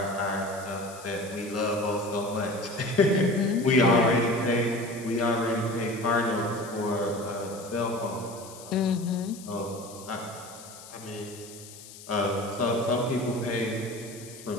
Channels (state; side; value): noise; left; hiss, 17 dB below the sound